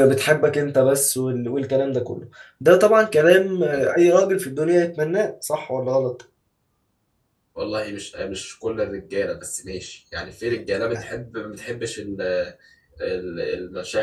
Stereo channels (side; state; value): both; identical; correlation 1.00